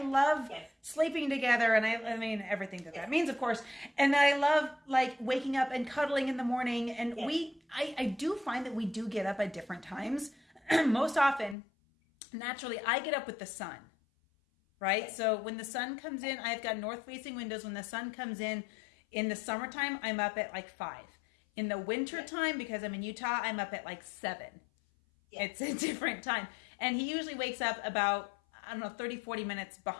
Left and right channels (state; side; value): drops out; right; at 11.6 s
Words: love Yes. sleeping together and I mean, everything that means, of course. And then I love like waking up and cuddling in the morning. And Yes. I do find that we do get up at different times. Most often, naturally, I get up with the sun, right? Yes. So when the sun comes in, I've got north facing windows. When the sun comes in the summertime, I'm up at like 5. In the winter time, because I'm in Utah, I'm up at like 7. Yes. It's a different time. And he usually wakes up about, I don't know, 30, 40 minutes